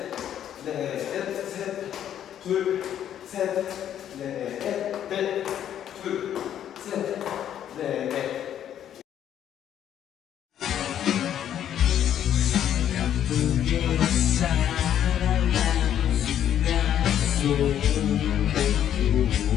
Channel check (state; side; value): quieter; right; 10.3 dB